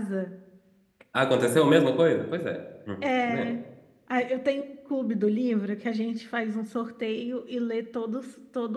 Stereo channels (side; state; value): both; identical; correlation 1.00